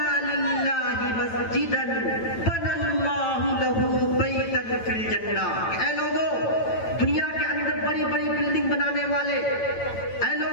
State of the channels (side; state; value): right; late; 9.0 ms